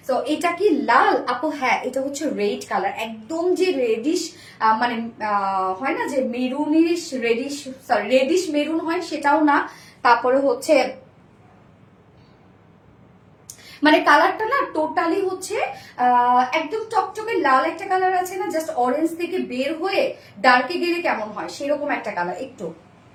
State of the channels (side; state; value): both; identical; correlation 1.00